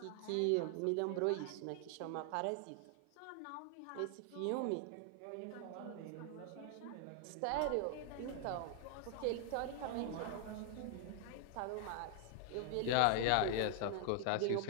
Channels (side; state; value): both; different; correlation 0.00